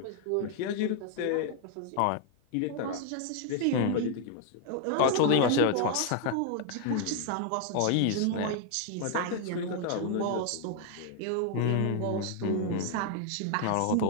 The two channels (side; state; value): both; different; correlation 0.00